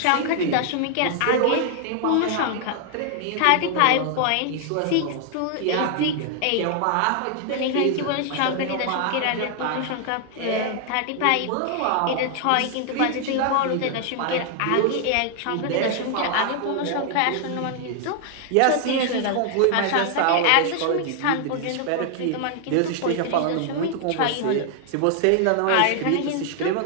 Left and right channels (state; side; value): different; both; correlation 0.00